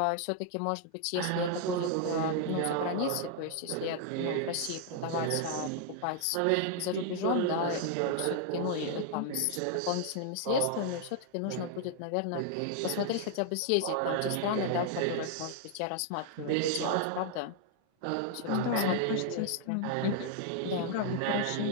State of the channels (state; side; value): different; both; correlation 0.00